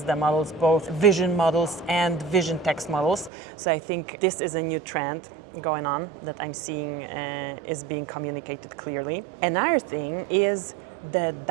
the models, both vision models and vision text models. So I think this is a new trend going on that I'm seeing is being communicated clearly. Another thing is the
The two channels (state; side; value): drops out; left; at 3.3 s